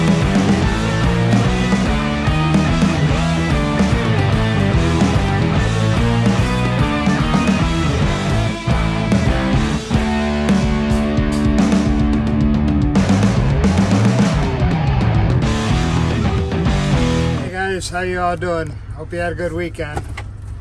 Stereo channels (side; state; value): both; identical; correlation 1.00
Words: How you all doing? Hope you had a good weekend.